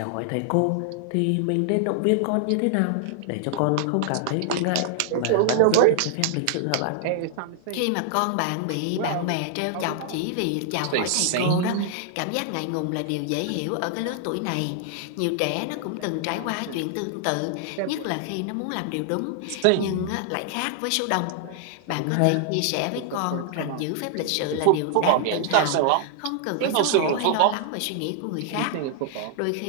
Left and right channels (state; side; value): different; both; correlation 0.00